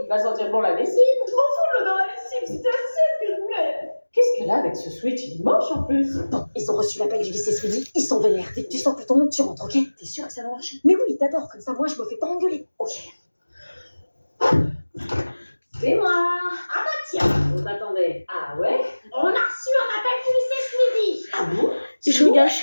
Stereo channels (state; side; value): inverted; both; correlation -1.00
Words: Il va sentir bon la lessive. Je m'en fous de l'eau dans la lessive, c'était la seule que je voulais. Qu'est-ce qu'elle a avec ce switch? Il mange en plus. Bon, ils ont reçu l'appel du lycée Swedy, ils sont vénères. Dès que tu sens que ton monde, tu rentres, ok? T'es sûr que ça va marcher? Mais oui, t'adores, comme ça, moi, je me fais pas engueuler. Ok. C'est moi. Ah bah tiens, on t'attendait. Ah ouais? On a reçu un appel du lycée Swedy. Ah bon? Je regarde